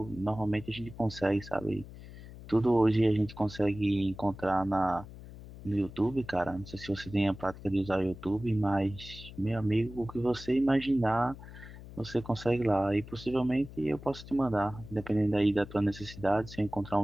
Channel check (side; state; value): left; noise; hum, 15 dB below the sound